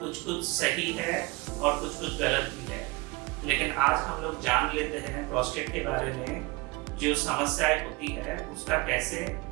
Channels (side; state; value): left; quieter; 23.8 dB